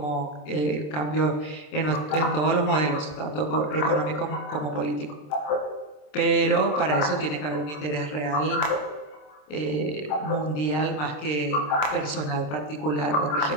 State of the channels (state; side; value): late; right; 27 ms